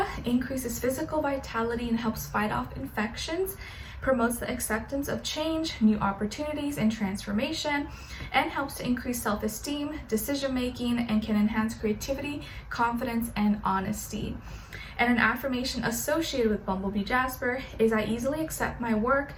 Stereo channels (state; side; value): identical; both; correlation 1.00